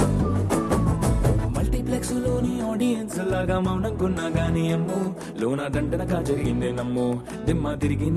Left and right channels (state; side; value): identical; both; correlation 1.00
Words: మల్టీప్లెక్స్ లోని ఆడియన్స్ లాగా మౌనంకున్నా గానీ అమ్ము లోన దండనగా జరిగిందే నమ్ము దిమ్మ తిరిగి